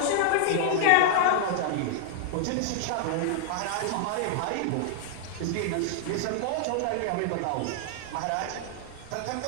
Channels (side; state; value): both; different; correlation -0.01